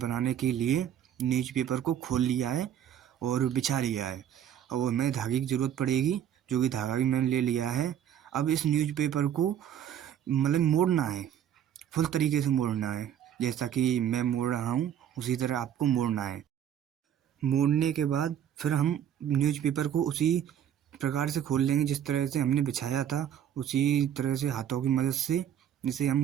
के लिए न्यूज़पेपर को खोल लिया है और बिछा लिया है। और हमें धागे की ज़रूरत पड़ेगी, जो कि धागा भी मैंने ले लिया है। अब इस न्यूज़पेपर को मतलब मोड़ना है, फुल तरीके से मोड़ना है। जैसा कि मैं मोड़ रहा हूँ, उसी तरह आपको मोड़ना है। मोड़ने के बाद फिर हम न्यूज़पेपर को उसी प्रकार से खोल लेंगे जिस तरह से हमने बिछाया था। उसी तरह से हाथों की मदद से इसे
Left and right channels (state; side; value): quieter; left; 9.8 dB